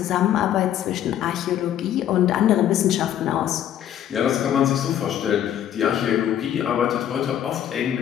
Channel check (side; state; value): right; quieter; 10.7 dB